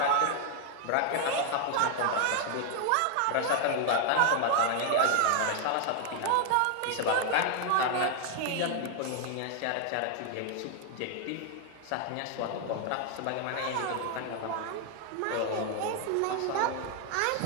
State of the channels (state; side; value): different; both; correlation 0.00